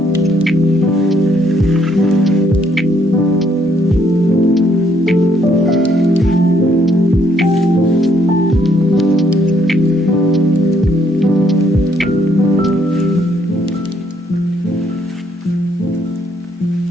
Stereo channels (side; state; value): both; normal; correlation 0.70